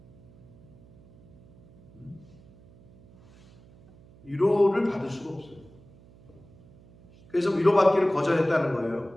위로를 받을 수가 없어요. 그래서 위로받기를 거절했다는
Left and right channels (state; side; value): noise; right; hum, 25 dB below the sound